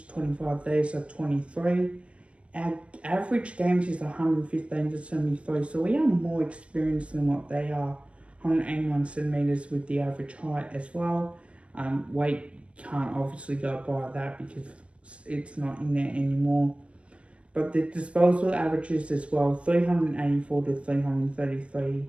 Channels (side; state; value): left; late; 0.061 ms